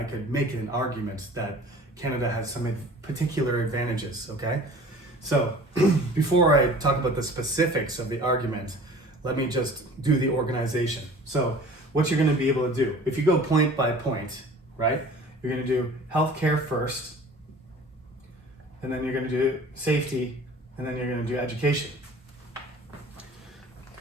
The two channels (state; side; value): normal; both; correlation 0.45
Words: could make an argument that Canada has some particular advantages, okay? So before I talk about the specifics of the argument, let me just do the organization. So what you're going to be able to do, if you go point by point, right? You're going to do healthcare first, and then you're going to do safety, and then you're going to do education.